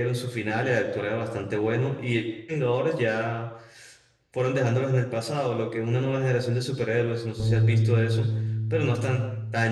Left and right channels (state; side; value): identical; both; correlation 1.00